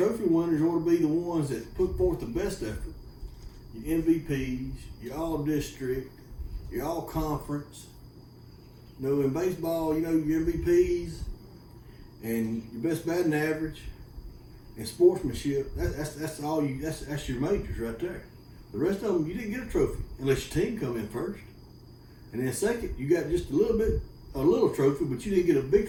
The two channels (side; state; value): both; identical; correlation 1.00